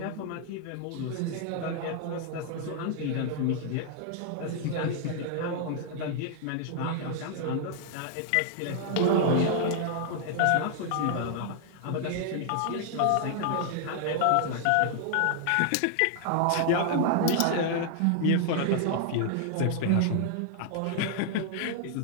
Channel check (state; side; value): different; both; correlation 0.00